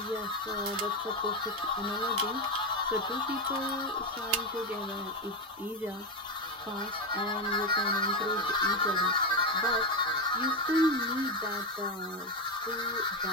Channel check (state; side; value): normal; both; correlation 0.10